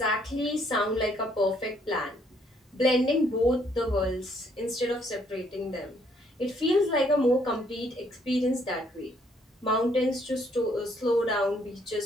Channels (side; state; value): both; normal; correlation 0.68